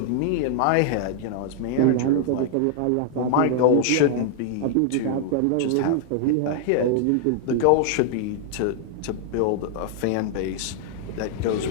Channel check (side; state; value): both; different; correlation 0.00